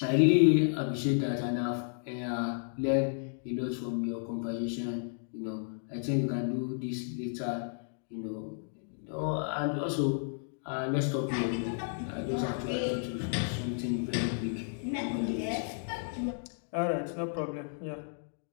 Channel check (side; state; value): right; silent; digital silence